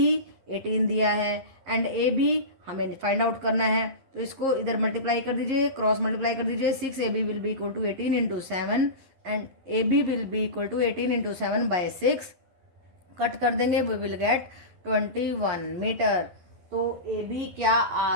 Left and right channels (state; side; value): late; left; 11 ms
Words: 18 दिया है एंड AB हमें फाइंड आउट करना है. तो इसको इधर मल्टीप्लाई कर दीजिए, क्रॉस मल्टीप्लाई कर दीजिए. 6AB will be equal to 18 into 7 and AB will be equal to 18 into 7/6. Cut कर देंगे, वी विल गेट 21 मीटर. तो AB क्या